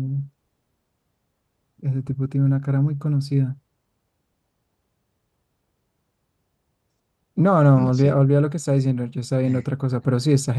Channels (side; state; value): both; identical; correlation 1.00